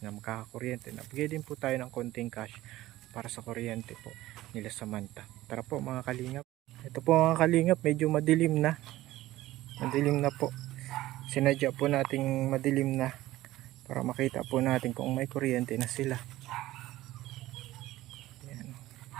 na magkakakuryente. Nabigay din po tayo ng konting cash para sa kuryente po nila Samantha. Tara po mga kalingap. Ito po mga kalingap, medyo madilim na. Madilim na po. Sinadya po nating madilim na para makita po natin kung may kuryente na sila.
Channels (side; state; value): left; quieter; 16.2 dB